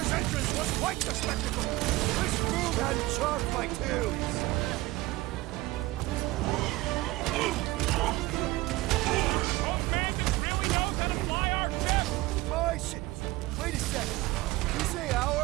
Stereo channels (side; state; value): left; quieter; 19.4 dB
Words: entrance was quite the spectacle! This Foom had chalked my tunes! Mantis really knows how to fly our ship! My shit! Wait a second. Did you say